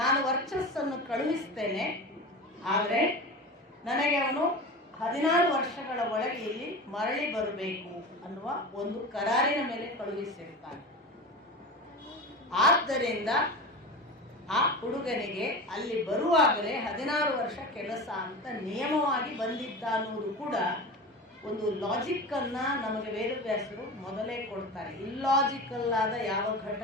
ವರ್ಚಸ್ಸನ್ನು ಕಳುಹಿಸ್ತೇನೆ, ಆದರೆ ನನಗೆ ಅವನು 16 ವರ್ಷಗಳ ಒಳಗೆ ಇಲ್ಲಿ ಮರಳಿ ಬರಬೇಕು ಅನ್ನುವ ಒಂದು ಕರಾರಿನ ಮೇಲೆ ಕಳುಹಿಸಿರ್ತಾನೆ. ಆದ್ದರಿಂದ ಆ ಹುಡುಗನಿಗೆ ಅಲ್ಲಿ ಬರುವಾಗಲೇ 16 ವರ್ಷ ಕೆಲಸ ಅಂತ ನಿಯಮವಾಗಿ ಬಂದಿದ್ದ ಅನ್ನೋದು ಕೂಡ ಒಂದು ಲಾಜಿಕ್ ಅನ್ನ ನಮಗೆ ವೇದವ್ಯಾಸರು ಮೊದಲೇ ಕೊಡ್ತಾರೆ. ಇಲ್ಲಾಜಿಕಲ್ ಆದ ಯಾವ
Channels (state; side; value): normal; both; correlation 0.29